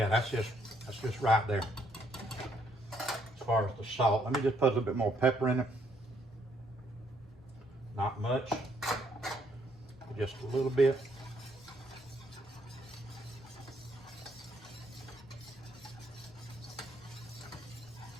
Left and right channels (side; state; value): both; normal; correlation 0.70